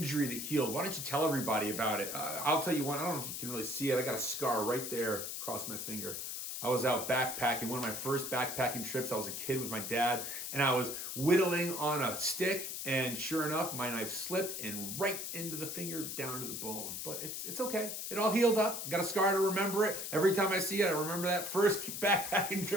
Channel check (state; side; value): noise; left; hiss, 5 dB below the sound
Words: that healed. Why don't you tell everybody about it? I'll tell you one. I don't know if you can really see it. I got a scar right there across my finger. I was out backpacking, one of my first backpacking trips. I was a kid with my dad, and I was whittling on a stick, and sure enough, my knife slipped and right into the finger, down to the bone. But it's okay. It all healed up. Got a scar to remember it. Every time I see it, I remember that first backpacking